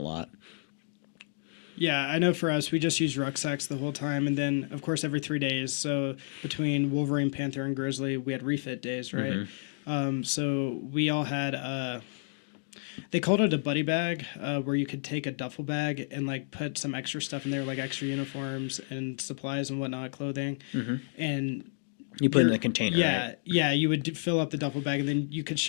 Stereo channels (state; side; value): silent; right; digital silence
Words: lot. Yeah, I know for us, we just used rucksacks the whole time. And then, of course, every 3 days. So between Wolverine, Panther, and Grizzly, we had refit days, right? So we all had, they called it a buddy bag, where you could take a duffel bag and like put some extra stuff in there, like extra uniforms and supplies and whatnot, clothing. And You put it in the container, yeah, right? yeah, you would fill up the duffel bag, and then you could